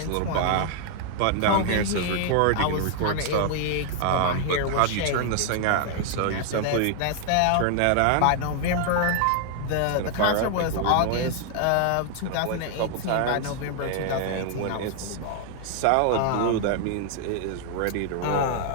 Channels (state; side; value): different; both; correlation 0.00